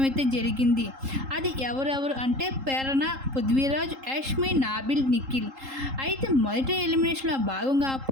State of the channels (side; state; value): left; late; 3.7 ms